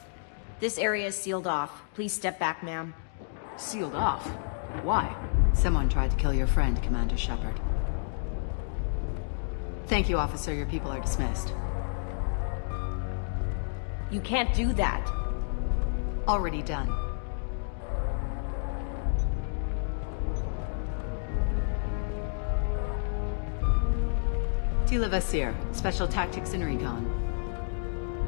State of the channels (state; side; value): silent; right; digital silence